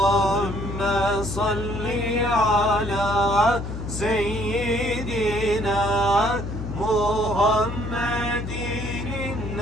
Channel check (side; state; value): left; noise; hum, 6 dB below the sound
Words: صل على سيدنا محمد